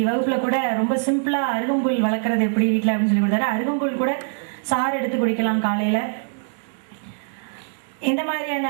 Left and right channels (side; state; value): left; silent; digital silence